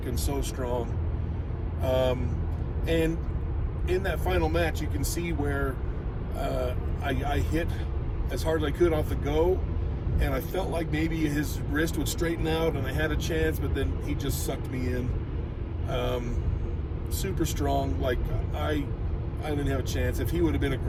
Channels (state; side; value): identical; both; correlation 1.00